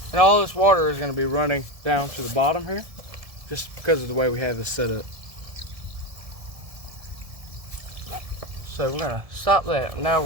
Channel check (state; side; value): late; left; 1.7 ms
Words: And all this water is going to be running down to the bottom here just because of the way we have this set up. So we're going to stop that. Now